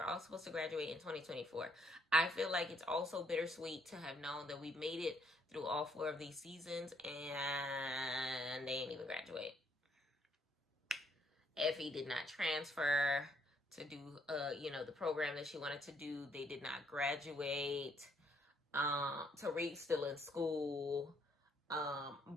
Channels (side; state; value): both; normal; correlation 0.70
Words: all supposed to graduate in 2024. I feel like it's also bittersweet to have known that we made it through all 4 of these seasons and they didn't even graduate. Effie did not transfer to do, the program that she wanted to do. They did not graduate. Tariq still in school.